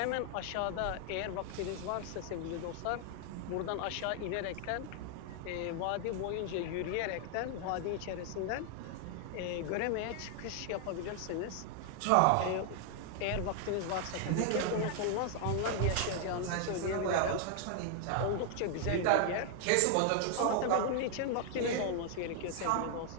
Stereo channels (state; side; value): different; both; correlation 0.00